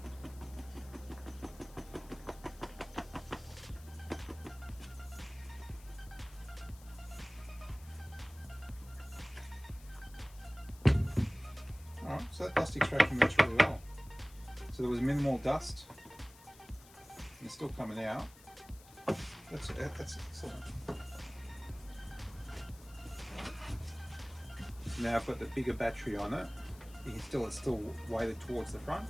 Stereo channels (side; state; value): left; noise; hiss, 22 dB below the sound